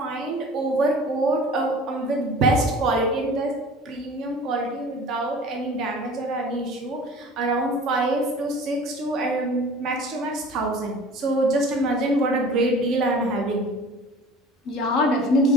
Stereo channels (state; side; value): normal; both; correlation 0.43